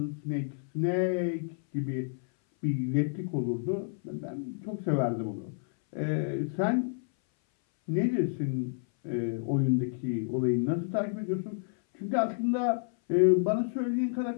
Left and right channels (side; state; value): right; silent; 58 dB below the other